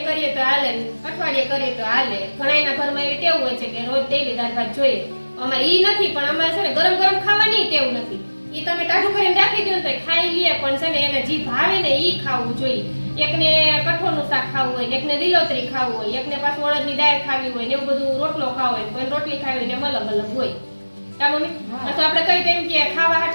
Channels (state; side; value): inverted; both; correlation -1.00